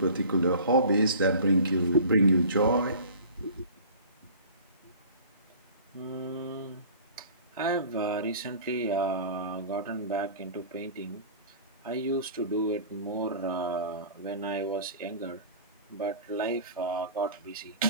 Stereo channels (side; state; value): both; inverted; correlation -0.42